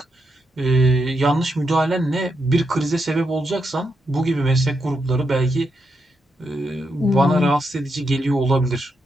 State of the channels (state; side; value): normal; both; correlation 0.82